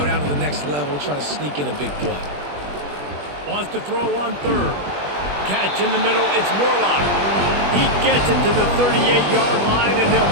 down to the next level, try to sneak in a big play. Wants to throw on 3rd. Catch in the middle, it's Morlock. He gets it to the 38-yard line, and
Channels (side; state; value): left; late; 20 ms